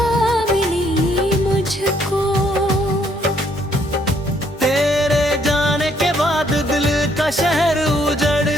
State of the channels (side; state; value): both; normal; correlation 0.68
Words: मिली मुझको। तेरे जाने के बाद दिल का शहर